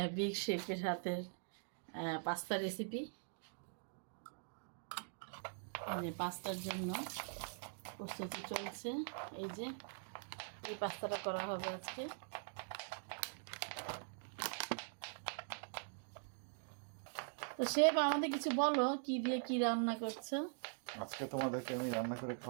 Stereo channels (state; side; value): silent; left; digital silence